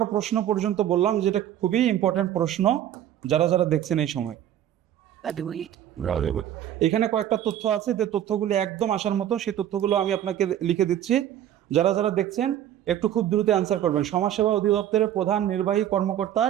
প্রশ্ন পর্যন্ত বললাম, যেটা খুবই ইম্পর্টেন্ট প্রশ্ন যারা যারা দেখছেন এই সময়। এখানে কয়েকটা তথ্য আছে, যে তথ্যগুলো একদম আসার মতো, সেই তথ্যগুলো আমি আপনাকে লিখে দিচ্ছি। যারা যারা দেখছেন একটু খুব দ্রুত অ্যান্সার করবেন। সমাজসেবা অধিদপ্তরের প্রধান নির্বাহী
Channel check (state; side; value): quieter; left; 11.2 dB